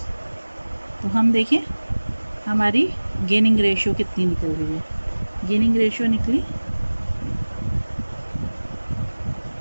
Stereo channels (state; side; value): inverted; both; correlation -1.00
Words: तो हम देखें हमारी गेनिंग रेशियो कितनी निकल रही है। गेनिंग रेशियो निकली